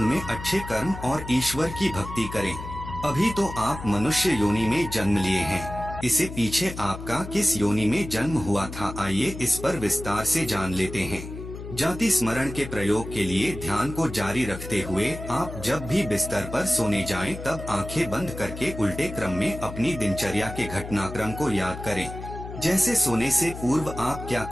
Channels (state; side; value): noise; left; hum, 10 dB below the sound